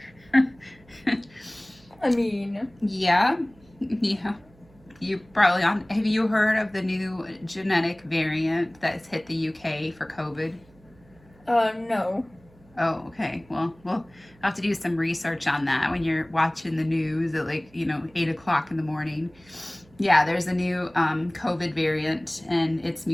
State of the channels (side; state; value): right; noise; hum, 28 dB below the sound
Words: I mean, Yeah, yeah. You probably on. Have you heard of the new genetic variant that's hit the UK for COVID? no. Oh, okay. Well, we'll have to do some research on that when you're watching the news at 8 o'clock in the morning. Yeah, there's a new COVID variant, and it's